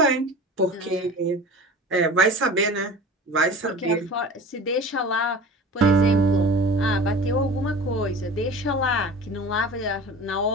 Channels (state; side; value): normal; both; correlation 0.37